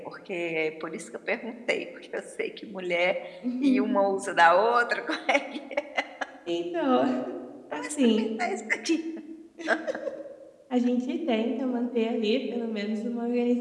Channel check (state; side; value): identical; both; correlation 1.00